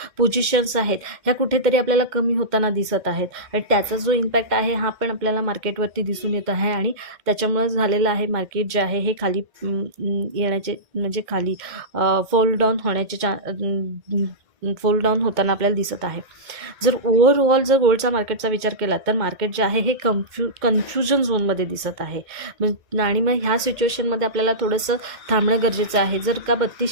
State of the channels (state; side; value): late; left; 2.1 ms